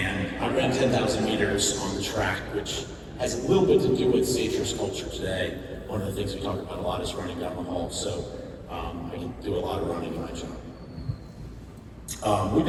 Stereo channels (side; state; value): both; identical; correlation 1.00